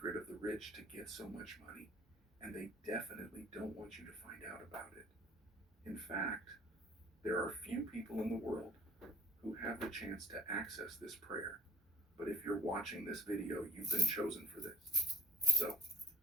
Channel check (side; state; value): both; normal; correlation 0.48